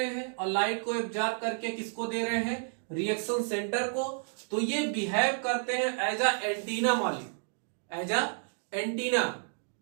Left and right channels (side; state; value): left; silent; 57 dB below the other